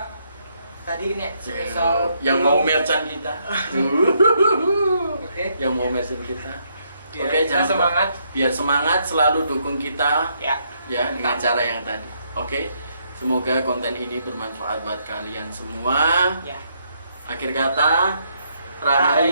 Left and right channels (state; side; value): inverted; both; correlation -0.74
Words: tadi ini spesial yang mau merchant kita. Oke. Yang mau merchant kita. Biar Oke, kita jangan lupa. semangat. Biar semangat, selalu dukung kita Ya. ya dengan cara yang tadi. Oke. Semoga konten ini bermanfaat buat kalian semua. Ya. Akhir kata,